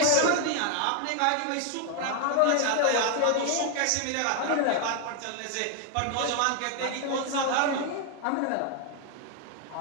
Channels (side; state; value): both; different; correlation 0.00